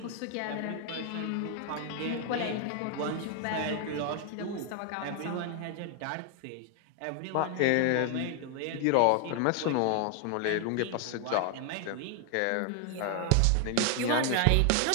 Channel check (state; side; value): different; both; correlation 0.00